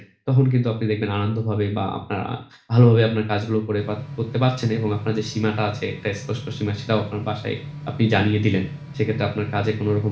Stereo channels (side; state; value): both; identical; correlation 1.00